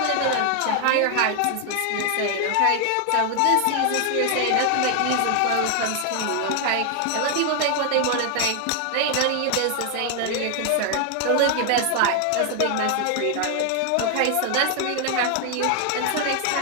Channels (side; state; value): both; different; correlation 0.00